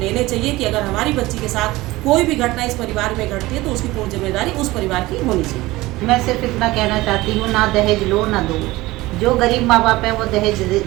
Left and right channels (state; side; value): quieter; left; 19.3 dB